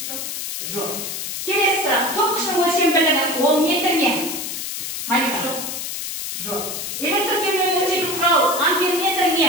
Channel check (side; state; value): left; noise; hiss, 5 dB below the sound